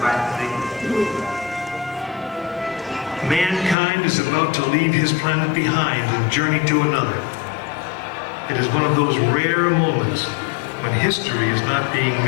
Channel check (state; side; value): drops out; right; at 3.8 s